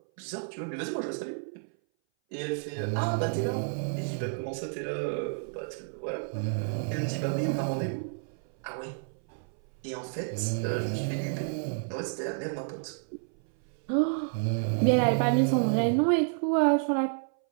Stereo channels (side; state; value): left; silent; 58 dB below the other